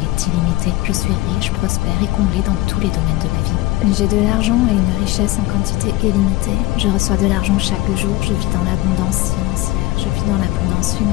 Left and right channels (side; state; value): right; quieter; 18.5 dB